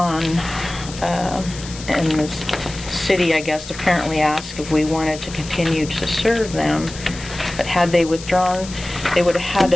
and the city, I guess, apparently asked if we wanted to continue to serve them, but had they withdrawn, they would have had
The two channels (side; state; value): left; noise; hiss, 13 dB below the sound